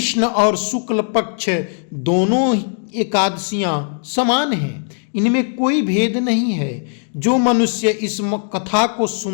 और शुक्ल पक्ष दोनों एकादशियां समान हैं, इनमें कोई भेद नहीं है। जो मनुष्य इस कथा को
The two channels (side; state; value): right; silent; digital silence